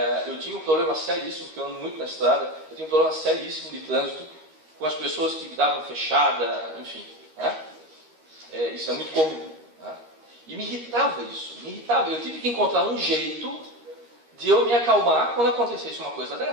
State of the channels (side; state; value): left; late; 13 ms